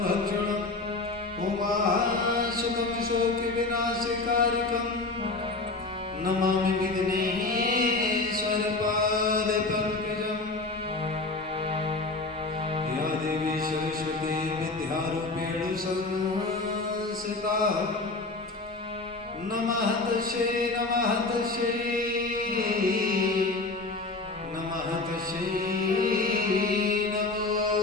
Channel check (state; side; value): quieter; right; 3.4 dB